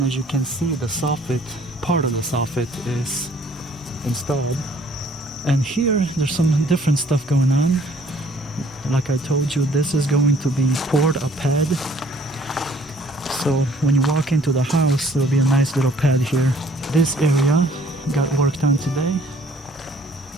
as you can see, the soffit, part of the soffit is installed. And here, there's some different stuff going on. Like I told you, this is going to be poured a pad. So when you walk into the house, there'll be a nice little pad here. This area got worked on today.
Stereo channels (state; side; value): normal; both; correlation 0.58